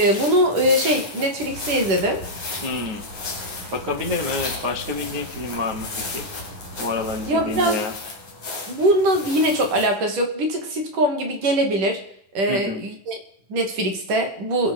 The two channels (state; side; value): late; left; 10 ms